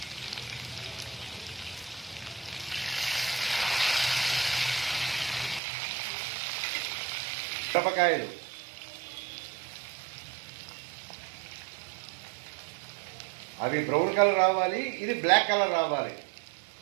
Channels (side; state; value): left; drops out; at 5.6 s